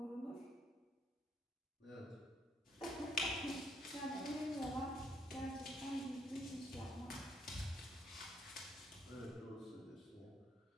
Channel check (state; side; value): normal; both; correlation 0.70